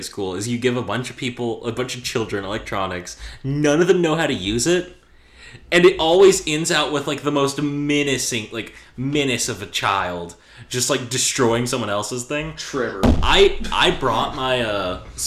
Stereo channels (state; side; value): identical; both; correlation 1.00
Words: school is you give a bunch of children electronics, none of them know how to use it, and it always ends out with like the most menace of a child just like destroying someone else's thing. Trevor. I brought my